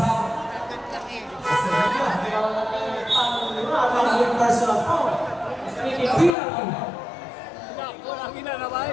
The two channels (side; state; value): right; drops out; at 6.4 s